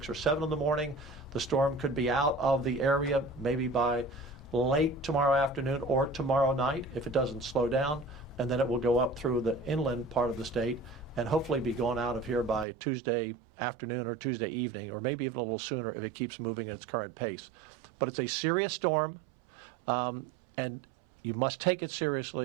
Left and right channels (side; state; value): left; drops out; at 12.7 s